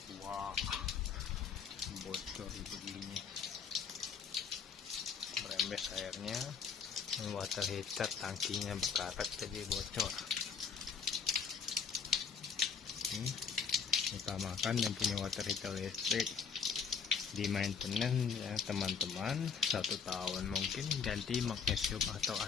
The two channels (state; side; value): quieter; right; 6.1 dB